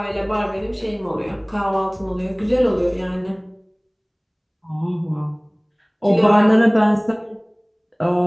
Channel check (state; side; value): identical; both; correlation 1.00